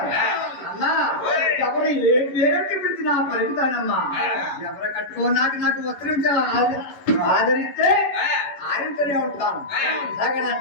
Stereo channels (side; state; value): right; late; 11 ms